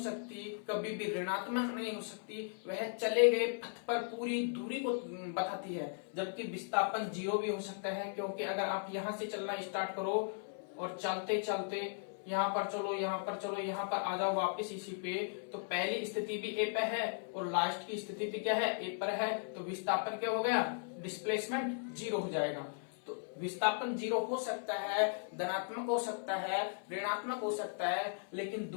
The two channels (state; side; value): silent; right; 53 dB below the other